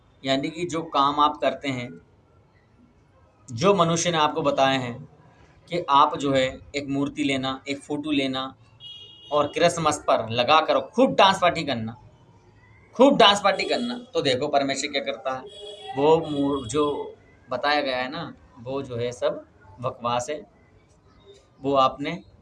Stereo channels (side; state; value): both; identical; correlation 1.00